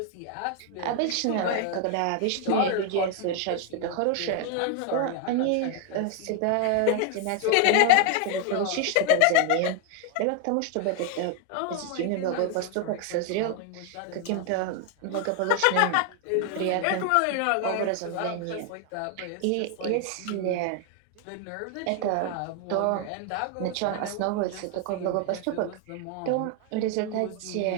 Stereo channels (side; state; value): both; different; correlation 0.01